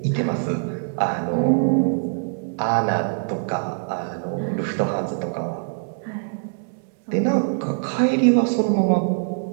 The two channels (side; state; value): left; silent; 63 dB below the other